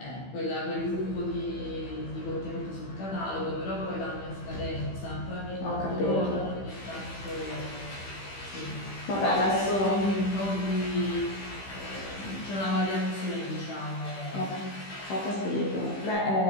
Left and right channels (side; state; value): right; late; 15 ms